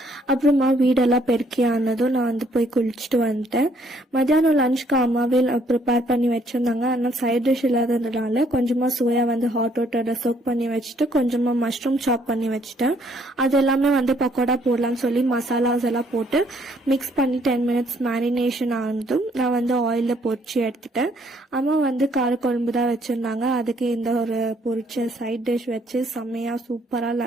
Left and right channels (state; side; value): normal; both; correlation 0.66